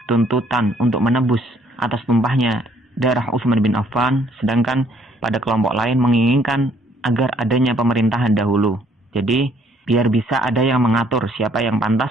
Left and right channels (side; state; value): both; normal; correlation 0.64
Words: tuntutan untuk menebus atas tumpahnya darah Utsman bin Affan, sedangkan pada kelompok lain menginginkan agar adanya pemerintahan dahulu. Jadi, biar bisa ada yang mengatur siapa yang